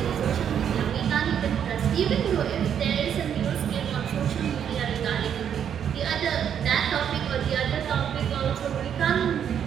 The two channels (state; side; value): quieter; left; 8.7 dB